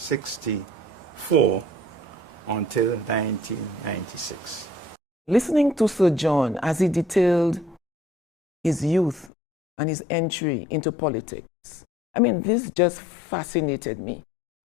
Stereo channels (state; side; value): drops out; right; at 9.3 s